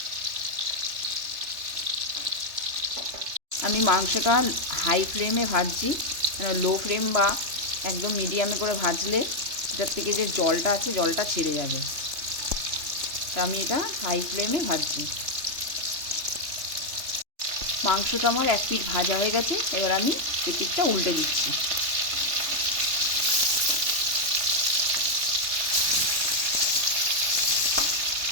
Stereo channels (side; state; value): left; late; 3.3 ms